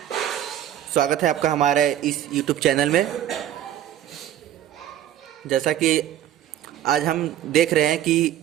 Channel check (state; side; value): quieter; left; 11.5 dB